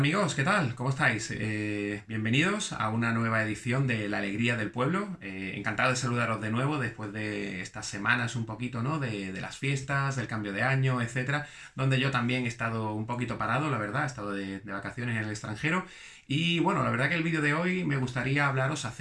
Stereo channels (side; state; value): both; identical; correlation 1.00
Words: ¿qué tal? ¿Cómo estáis? Bienvenidos a una nueva edición de La Alegría del Pueblo. Encantado de saludaros de nuevo después de estas semanas un poquito, ¿no? De las fiestas, del cambio de año, etcétera, donde yo también he estado un poquito parado, la verdad, he estado de vacaciones en el extranjero. Y bueno, la verdad que el vídeo de hoy me gustaría hablaros